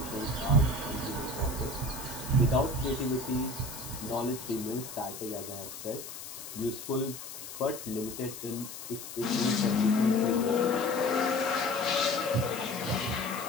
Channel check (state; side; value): noise; left; hiss, 11 dB below the sound